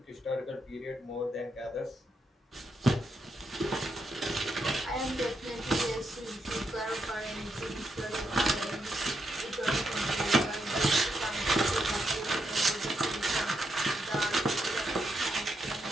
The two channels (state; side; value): normal; both; correlation 0.81